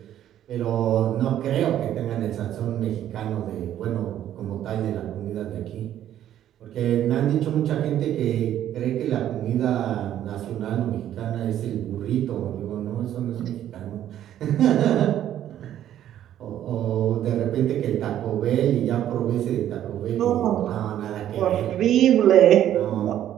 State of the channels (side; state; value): left; quieter; 11.4 dB